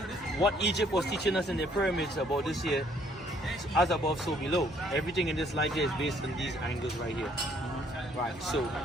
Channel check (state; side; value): normal; both; correlation 0.64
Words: what Egypt was teaching us in the pyramids about this here, as above, so below. Everything in this life here is based on these angles right here. Right. So,